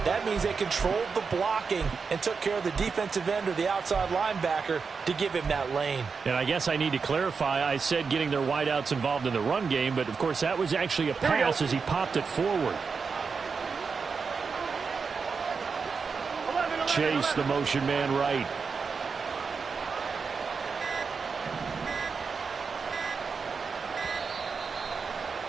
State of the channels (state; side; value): quieter; left; 5.2 dB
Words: That means they controlled the blocking and took care of the defensive end or the outside linebacker to give him that lane. And I guess I need to clarify, I said getting their wideouts involved in the run game, but of course that was actually a pass as he popped it forward. Chase, the motion man right.